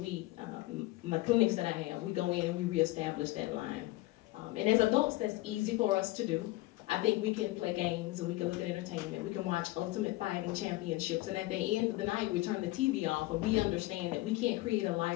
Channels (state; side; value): quieter; right; 18.9 dB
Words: my clinics that I have, we go in and we reestablish that line. And as adults, that's easy for us to do. I think we can play games and we can look at entertainment. We can watch Ultimate Fighting Championships, and at the end of the night, we turn the TV off and we understand that we can't create a